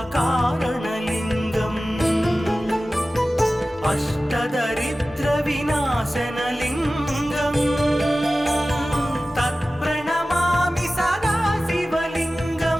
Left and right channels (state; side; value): normal; both; correlation 0.96